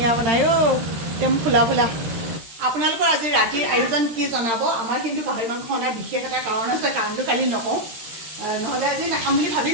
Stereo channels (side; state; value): left; late; 13 ms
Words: বনাই অ' একদম ফুলা ফুলা আপোনালোকৰ আজি ৰাতিৰ আয়োজন কি জনাব আমাৰ কিন্তু গাহৰি মাংস অনাৰ বিশেষ এটা কাৰণ আছে কাৰণটো কালি নকওঁ নহ'লে আজি নাখাম বুলি